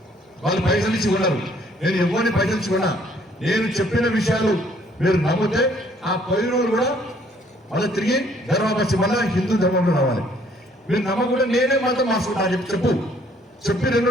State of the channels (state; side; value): normal; both; correlation 0.62